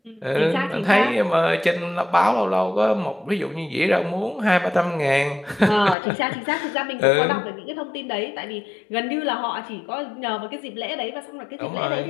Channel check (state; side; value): drops out; right; at 6.0 s